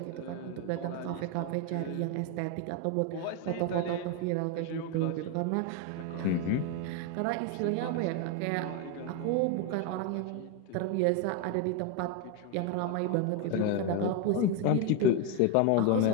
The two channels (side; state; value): both; different; correlation 0.01